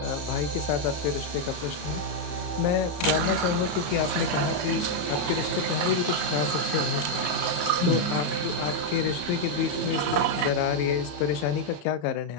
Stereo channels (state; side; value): late; right; 34 ms